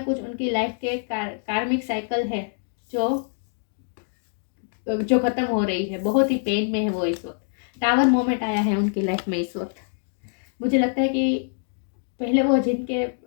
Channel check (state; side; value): silent; right; digital silence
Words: कुछ उनकी लाइफ के कार्मिक साइकिल है जो खत्म हो रही है। बहुत ही पेन में है वो इस वक्त। टावर मोमेंट आया है उनकी लाइफ में इस वक्त। मुझे लगता है कि पहले वो